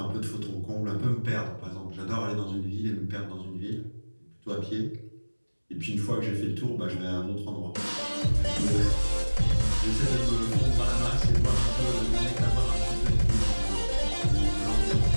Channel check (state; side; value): inverted; both; correlation -1.00